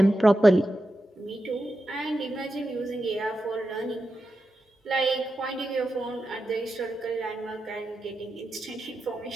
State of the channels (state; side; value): normal; both; correlation 0.90